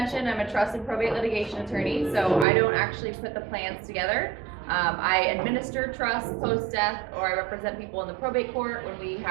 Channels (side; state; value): left; drops out; at 2.5 s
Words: I'm a trust and probate litigation attorney, so I don't actually put the plans together. I administer trusts post-death, or I represent people in the probate court when we